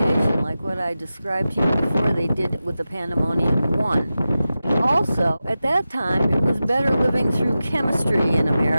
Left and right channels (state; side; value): inverted; both; correlation -0.93